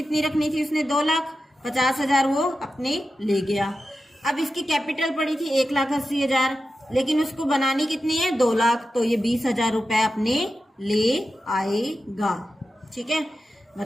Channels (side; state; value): both; normal; correlation 0.91